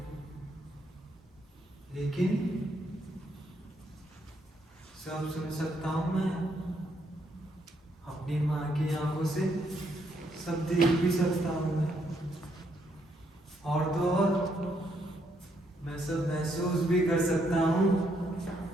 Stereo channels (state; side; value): normal; both; correlation 0.74